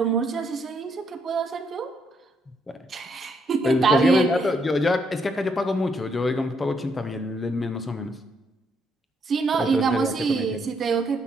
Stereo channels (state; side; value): normal; both; correlation 0.74